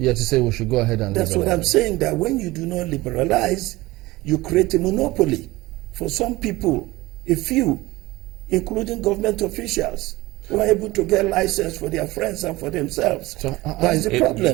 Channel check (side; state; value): left; quieter; 19.8 dB